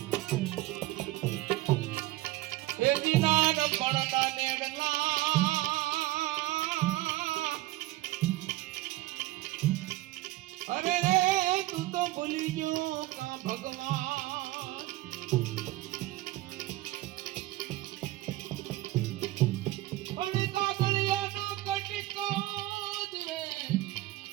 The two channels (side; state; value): left; quieter; 17.7 dB